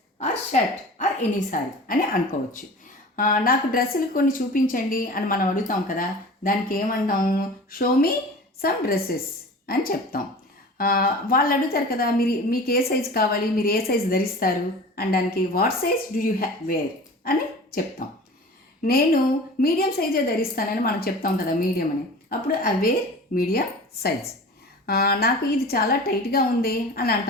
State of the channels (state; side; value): normal; both; correlation 0.38